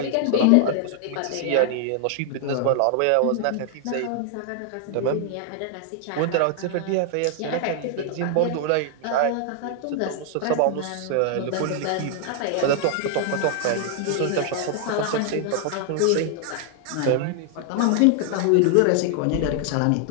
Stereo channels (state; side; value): different; both; correlation 0.00